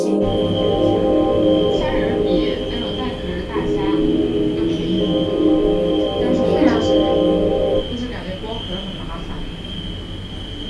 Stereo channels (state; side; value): identical; both; correlation 1.00